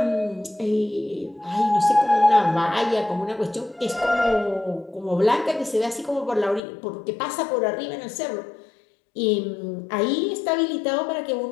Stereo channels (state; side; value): drops out; right; at 6.6 s